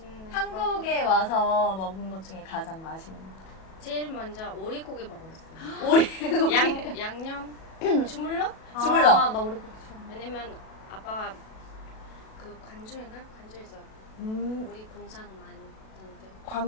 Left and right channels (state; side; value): late; right; 37 ms